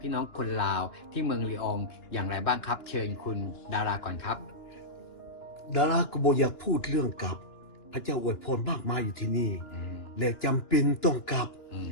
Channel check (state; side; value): late; right; 2.9 ms